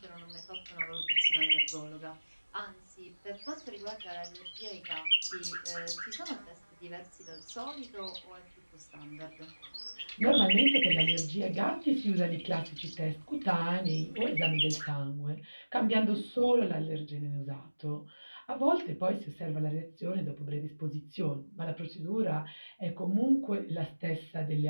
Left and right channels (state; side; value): inverted; both; correlation -1.00